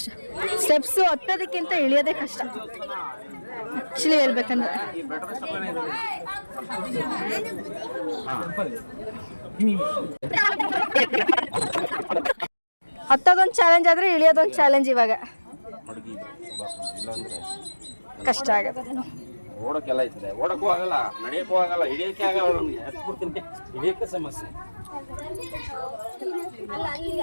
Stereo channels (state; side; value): inverted; both; correlation -1.00